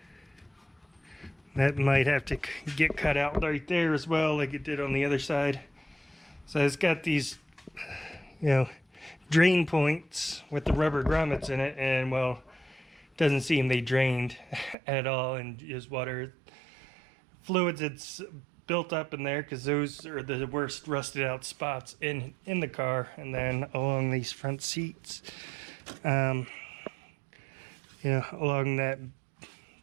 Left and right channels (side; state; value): left; drops out; at 14.8 s